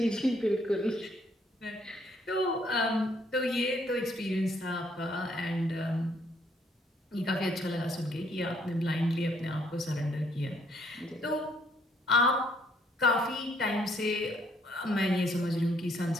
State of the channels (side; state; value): both; normal; correlation 0.68